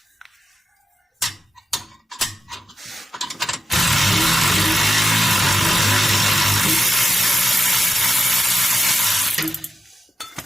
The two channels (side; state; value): both; normal; correlation 0.89